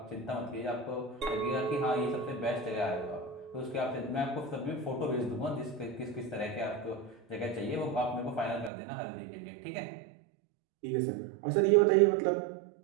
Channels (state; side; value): drops out; left; at 8.7 s